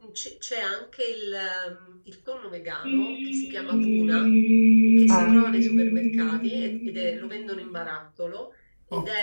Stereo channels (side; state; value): both; inverted; correlation -1.00